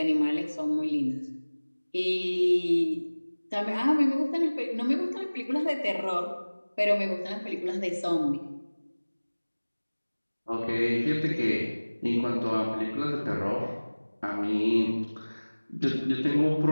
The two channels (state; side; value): inverted; both; correlation -1.00